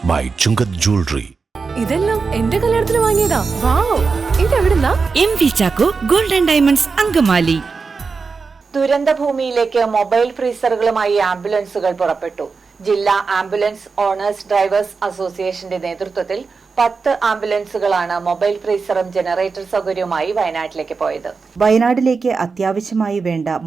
by Chungat Jewelry. ഇതെല്ലാം എന്റെ കല്യാണത്തിന് വാങ്ങിയതാ. വാവ്, ഇതെവിടുന്നാ? MV Chaco Golden Diamonds Angamaly. ദുരന്തഭൂമിയിലേക്ക് മൊബൈൽ ഫ്രീസറുകളുമായി ആംബുലൻസുകൾ പുറപ്പെട്ടു. ജില്ലാ ആംബുലൻസ് ഓണേഴ്സ് ഡ്രൈവേഴ്സ് അസോസിയേഷന്റെ നേതൃത്വത്തിൽ 10 ആംബുലൻസുകളാണ് മൊബൈൽ ഫ്രീസറും ജനറേറ്റർ സൗകര്യവുമായി വയനാട്ടിലേക്ക് പോയത്. വയനാട്ടിലേക്ക് അത്യാവശ്യമായി വേണ്ട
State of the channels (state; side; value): quieter; left; 4.7 dB